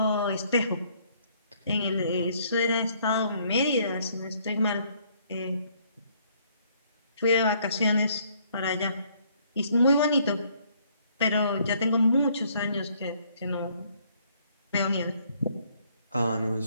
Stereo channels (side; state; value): both; inverted; correlation -0.65